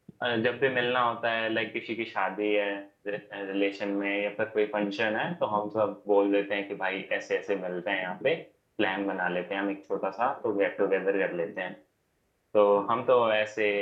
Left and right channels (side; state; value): both; identical; correlation 1.00